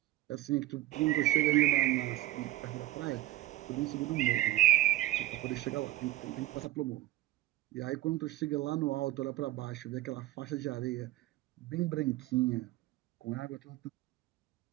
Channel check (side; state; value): left; quieter; 16.1 dB